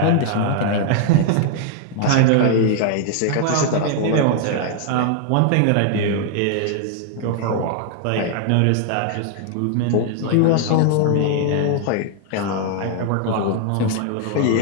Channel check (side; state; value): both; different; correlation -0.01